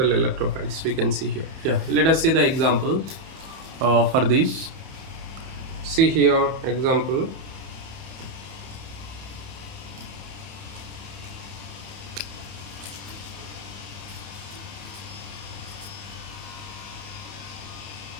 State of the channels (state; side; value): late; left; 31 ms